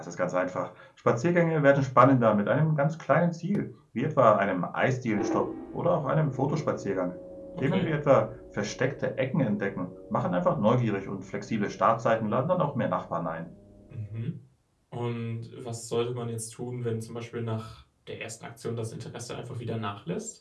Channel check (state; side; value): identical; both; correlation 1.00